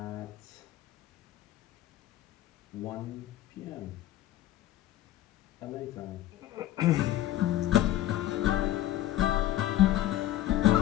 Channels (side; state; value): right; quieter; 13.9 dB